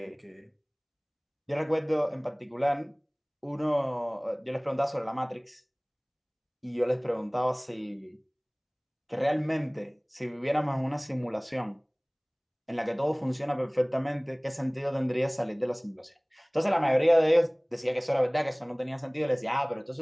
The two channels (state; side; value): identical; both; correlation 1.00